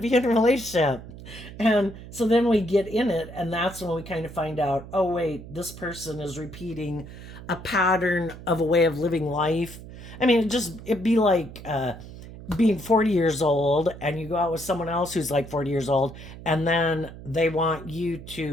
in a relationship. And so then we get in it, and that's when we kind of find out, oh, wait, this person is repeating a pattern of a way of living life. I mean, it'd be like being 40 years old, and you go out with someone else who's 40 years old, and then they want you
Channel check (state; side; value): noise; right; hum, 14 dB below the sound